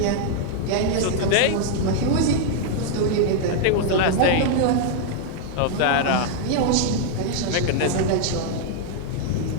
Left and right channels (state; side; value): different; both; correlation 0.00